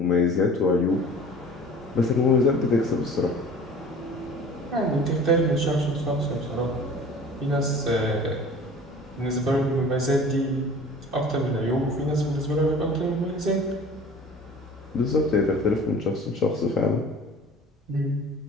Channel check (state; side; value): normal; both; correlation 0.44